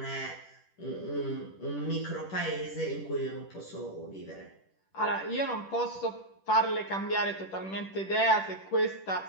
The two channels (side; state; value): right; late; 10 ms